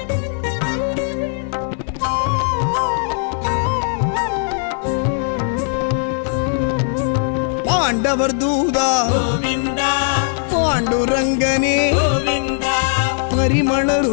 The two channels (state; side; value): silent; right; 64 dB below the other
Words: பாண்டவர் தூதா ಗೋವಿಂದ பாண்டுரங்கனே ಗೋವಿಂದ ಪರಿಮಳ